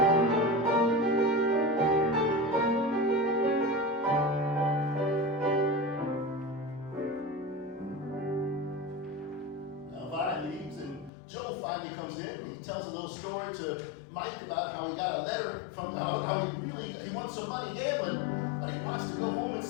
Now Vi leaves, and Joe finally comes in, and he tells a little story to Mike about how he got a letter from how he wants some money gambling, but he wants to go home and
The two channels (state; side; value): drops out; right; at 11.1 s